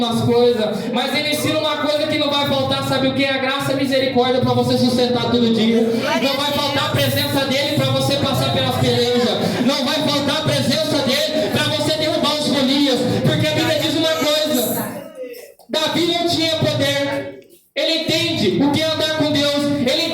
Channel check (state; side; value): identical; both; correlation 1.00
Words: coisas, mas ele ensina uma coisa que não vai faltar, sabe o que? A graça e a misericórdia para você sustentar todo dia. Não vai faltar a presença dele para você passar pelas pelejas. Não vai faltar a presença dele para você derrubar os Golias. Porque a Bíblia diz uma coisa: Davi não tinha poder. Ele entende o que é andar com Deus. Ele